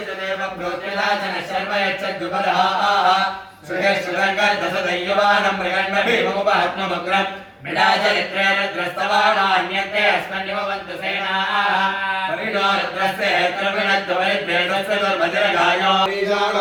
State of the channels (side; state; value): both; identical; correlation 1.00